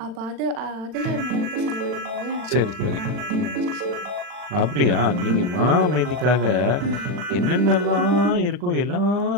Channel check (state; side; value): late; left; 40 ms